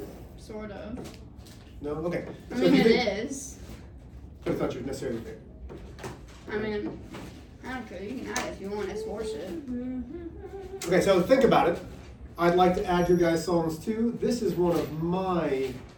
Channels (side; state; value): both; identical; correlation 1.00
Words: Sort of. No? Okay. I So mean, if you it think, is. but it's not your necessarily favorite. I mean, I don't care. You can add it if you want. It's worship. Okay, so think about it. I'd like to add your guys' songs too. This is one of my,